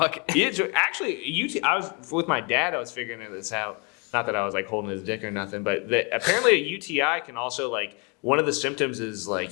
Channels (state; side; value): quieter; right; 32.7 dB